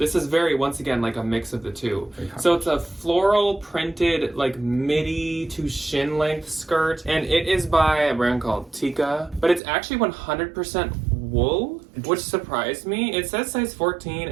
is very, once again, like a mix of the two. So it's a floral printed like midi to shin length skirt, and it is by a brand called Tika, but it's actually 100% wool, which surprised me. It says size 14,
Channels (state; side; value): drops out; left; at 9.6 s